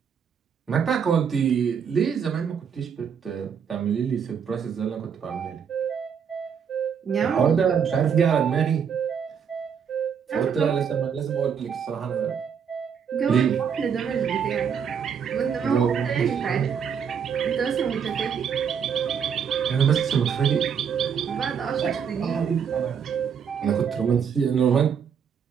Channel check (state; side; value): quieter; left; 7.3 dB